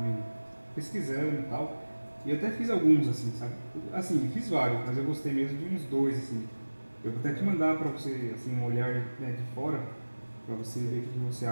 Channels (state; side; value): inverted; both; correlation -1.00